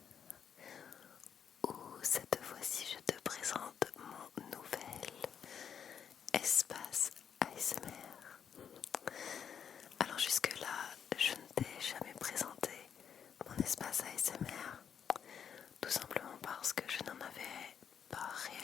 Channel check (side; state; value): right; quieter; 7.9 dB